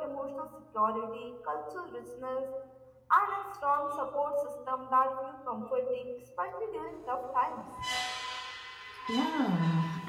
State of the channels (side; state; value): both; identical; correlation 1.00